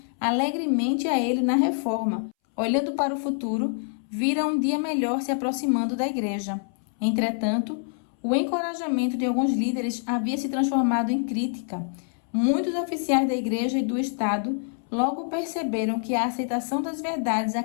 alegremente a ele na reforma. Olhando para o futuro, vira um dia melhor se aproximando da igreja. Entretanto, o encorajamento de alguns líderes havia se transformado em crítica. Muitos oficiais da igreja e do Estado logo perceberam que a aceitação das verdades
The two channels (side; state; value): right; silent; 61 dB below the other